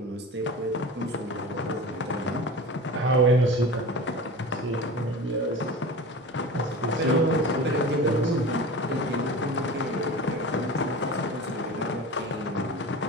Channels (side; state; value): both; normal; correlation 0.33